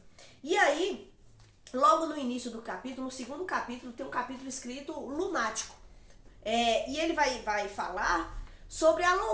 E aí, logo no início do capítulo, no segundo capítulo, tem um capítulo escrito Lunático. E ele vai falar sobre a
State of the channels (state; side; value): identical; both; correlation 1.00